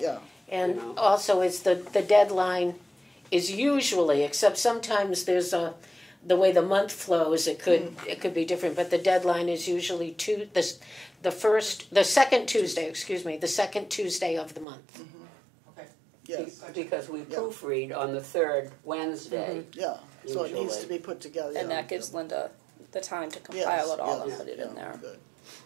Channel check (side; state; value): left; drops out; at 14.7 s